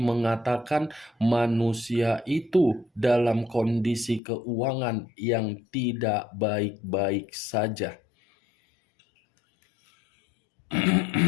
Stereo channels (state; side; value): drops out; right; at 4.2 s